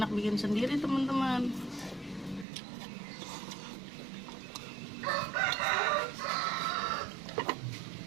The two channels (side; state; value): left; drops out; at 2.5 s